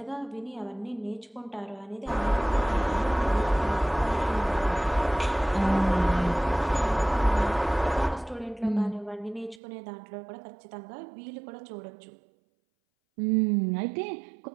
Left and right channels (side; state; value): left; drops out; at 9.6 s